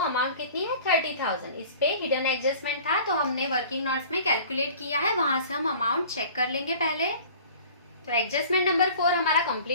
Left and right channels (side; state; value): both; inverted; correlation -0.45